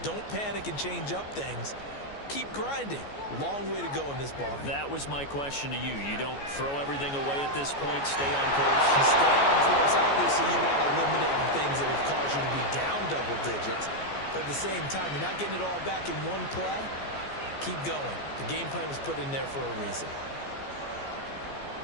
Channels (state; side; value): late; right; 14 ms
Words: Don't panic and change up things. Keep grinding. Long way to go in this ball game. That was my question to you. You don't throw everything away at this point. Stay on course. You stay on course. Obviously, you want to eliminate the things that have caused you to be down double digits. But at the same time, you're not getting it all back in one play. Keep going. The game plan was put in there for a reason.